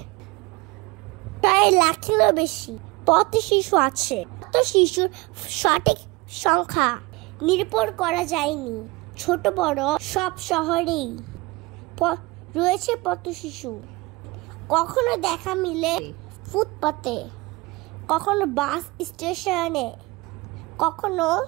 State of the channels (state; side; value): quieter; left; 23.6 dB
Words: প্রায় লাখেরও বেশি পথশিশু আছে। পথশিশুর সঠিক সংখ্যা নির্ভর করা যায়নি। ছোট বড় সব শহরেই রয়েছে পথশিশু। কখনো দেখা মিলে ফুটপাতে, কখনো বাস স্টেশনে, কখনো